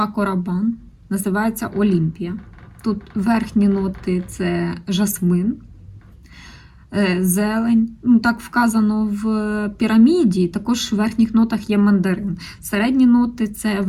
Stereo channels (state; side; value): identical; both; correlation 1.00